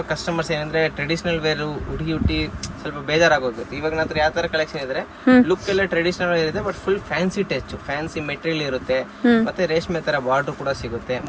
ಕಸ್ಟಮರ್ಸ್ ಏನಂದ್ರೆ ಟ್ರೆಡಿಷನಲ್ ವೇರು ಹುಡುಗಿ ಸ್ವಲ್ಪ ಬೇಜಾರಾಗೋಗುತ್ತೆ. ಇವಾಗ ನಂತರ ಯಾವ ಥರ ಕಲೆಕ್ಷನ್ ಇದ್ರೆ ಲುಕ್ ಎಲ್ಲ ಟ್ರೆಡಿಷನಲ್ ವೇರ್ ಇದೆ, but full fancy touch, fancy material ಇರುತ್ತೆ, ಮತ್ತೆ ರೇಷ್ಮೆ ಥರ ಬಾರ್ಡರ್ ಕೂಡ ಸಿಗುತ್ತೆ.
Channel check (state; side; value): identical; both; correlation 1.00